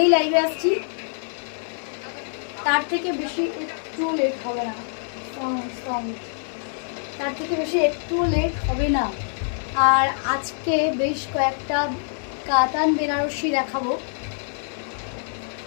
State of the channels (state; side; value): silent; right; digital silence